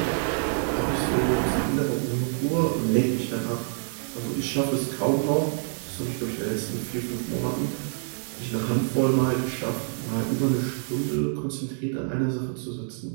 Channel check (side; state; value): left; silent; digital silence